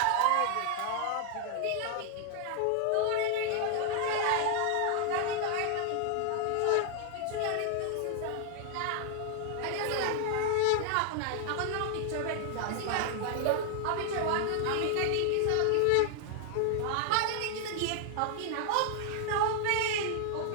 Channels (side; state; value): both; different; correlation 0.00